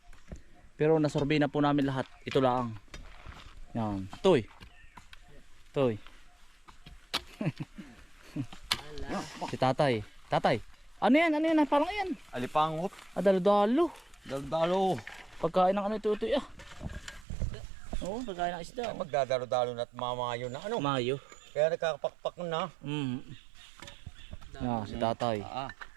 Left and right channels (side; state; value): left; drops out; at 17.2 s